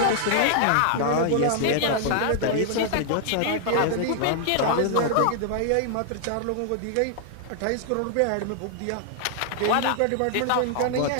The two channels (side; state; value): both; different; correlation 0.00